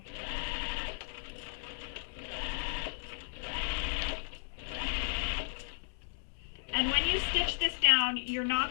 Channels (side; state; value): right; silent; digital silence